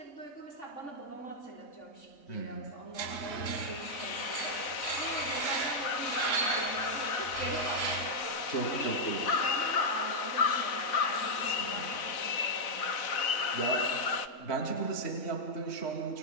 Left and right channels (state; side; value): late; right; 4.0 ms